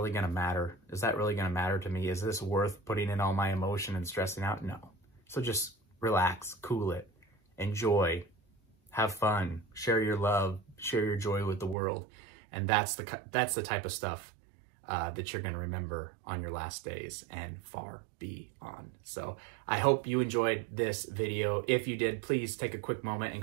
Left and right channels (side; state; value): left; drops out; at 11.8 s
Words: going to matter? Is that really going to matter to me? Is this worth putting in all my emotion and stressing out? No. So just relax, cool it, enjoy, have fun, share your love, share your joy with the world. And that's the type of stuff that you're going to remember on your last days and far beyond. So I hope you enjoyed this video. If you did, please take a quick moment and